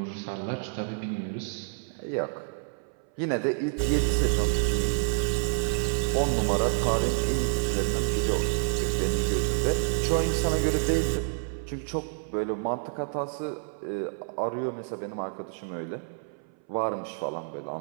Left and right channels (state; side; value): silent; left; 59 dB below the other